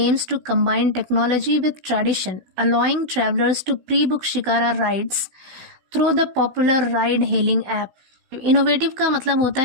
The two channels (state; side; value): late; left; 16 ms